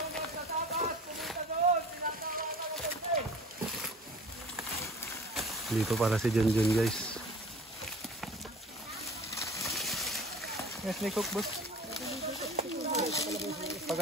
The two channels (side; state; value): both; normal; correlation 0.43